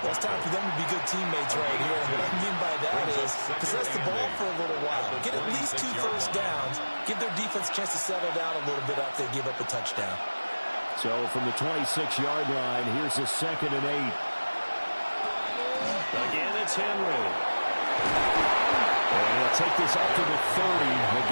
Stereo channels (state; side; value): inverted; both; correlation -1.00